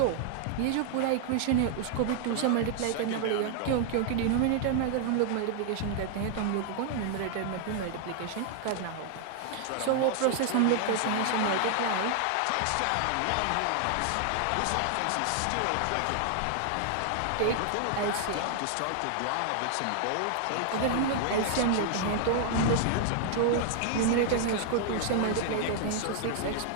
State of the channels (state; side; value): different; both; correlation 0.00